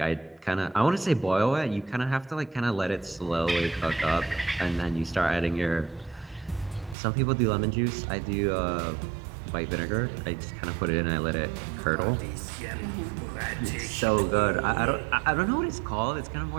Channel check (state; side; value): drops out; left; at 7.0 s